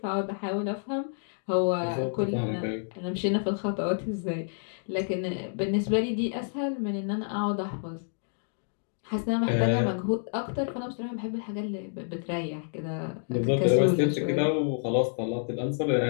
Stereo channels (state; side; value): silent; right; digital silence